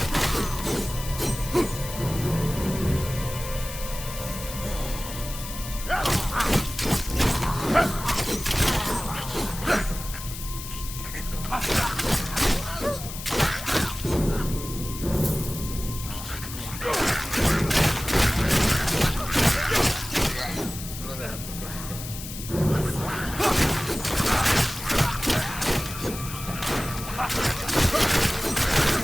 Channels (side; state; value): left; noise; hiss, 10 dB below the sound